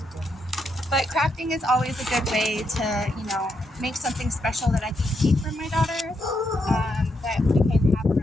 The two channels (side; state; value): both; normal; correlation 0.80